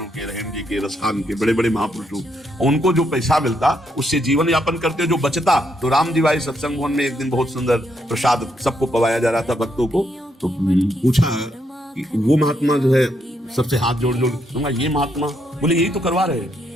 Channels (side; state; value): both; normal; correlation 0.77